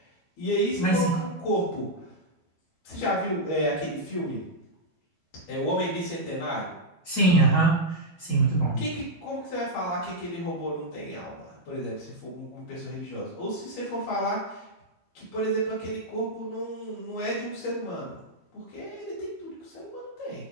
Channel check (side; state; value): right; late; 12 ms